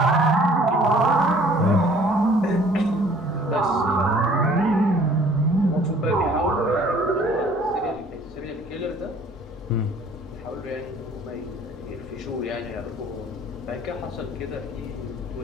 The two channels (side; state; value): both; normal; correlation 0.55